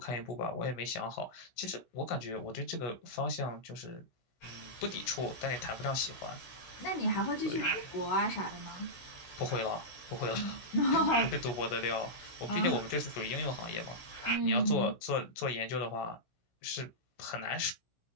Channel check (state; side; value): late; right; 16 ms